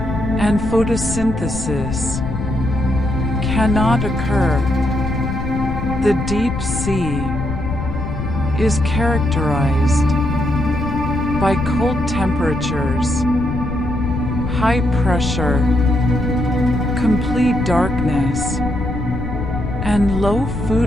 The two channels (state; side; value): noise; left; rumble, 5 dB below the sound